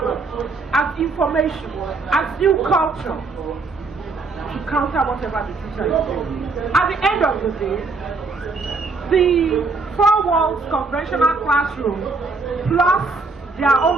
as information, as new culture, to counter whatever the teacher is doing. At the end of the day, the 4 walls conventional classroom plus their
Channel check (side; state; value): left; quieter; 3.9 dB